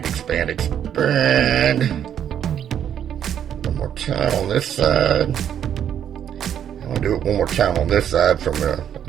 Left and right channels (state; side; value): quieter; left; 9.4 dB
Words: expand, expand. One more time on this side. I'm going to do it one more time on this side from a